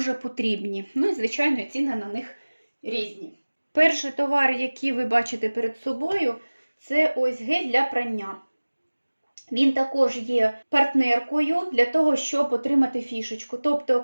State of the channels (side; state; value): both; inverted; correlation -1.00